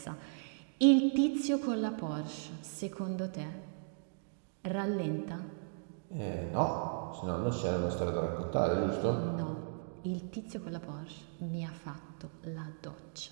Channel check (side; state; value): left; silent; digital silence